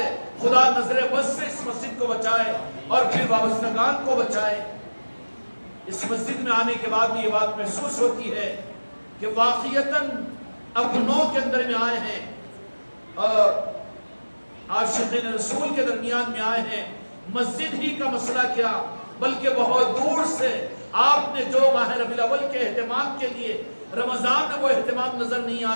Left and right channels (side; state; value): both; inverted; correlation -1.00